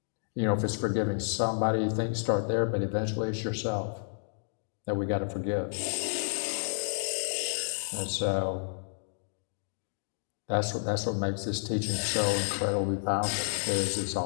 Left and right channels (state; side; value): silent; right; digital silence